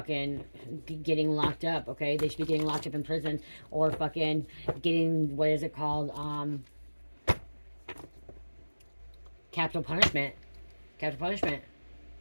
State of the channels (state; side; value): inverted; both; correlation -1.00